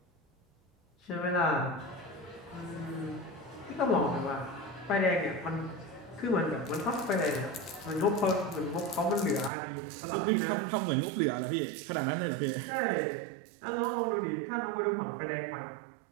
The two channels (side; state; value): left; drops out; at 9.5 s